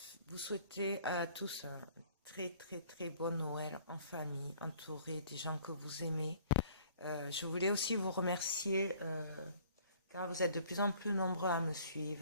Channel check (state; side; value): inverted; both; correlation -0.55